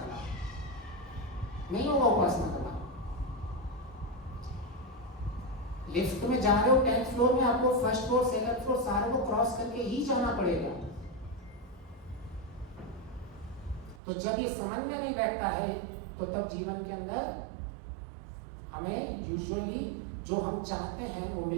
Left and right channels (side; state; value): left; drops out; at 14.0 s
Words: लाभ? नहीं होगा उपासना का लाभ। लिफ्ट में जा रहे हो 10th फ्लोर में, आपको फर्स्ट फ्लोर सेकंड फ्लोर सारे को क्रॉस करके ही जाना पड़ेगा। तो जब ये समझ में नहीं बैठता है तो तब जीवन के अंदर हमें यूजुअली जो हम चाहते हैं वो